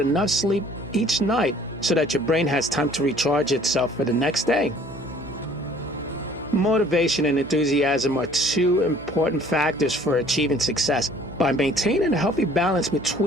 sleep each night so that your brain has time to recharge itself for the next day. Motivation and enthusiasm are two important factors for achieving success. By maintaining a healthy balance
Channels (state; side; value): noise; right; hum, 16 dB below the sound